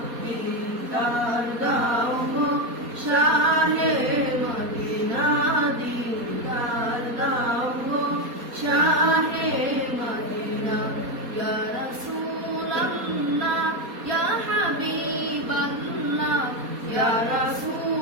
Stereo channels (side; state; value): left; late; 4.2 ms